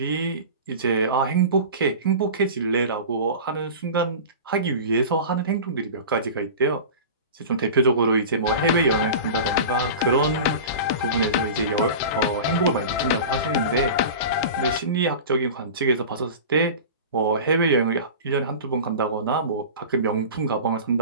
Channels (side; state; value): both; inverted; correlation -0.33